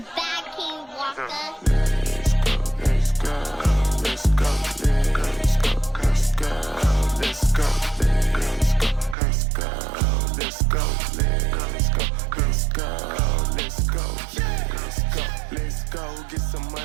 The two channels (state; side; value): drops out; left; at 9.2 s